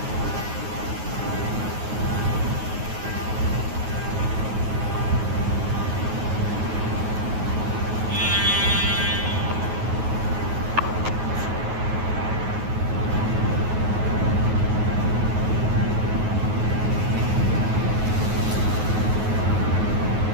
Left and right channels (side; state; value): left; late; 9.4 ms